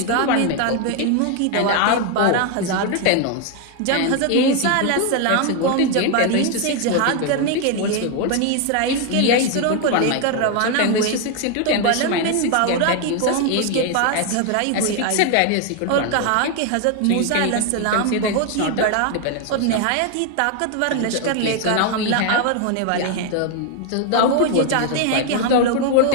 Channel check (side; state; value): both; different; correlation 0.01